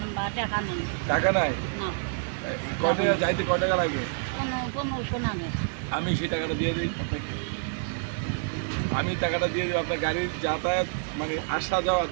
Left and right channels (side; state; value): left; silent; digital silence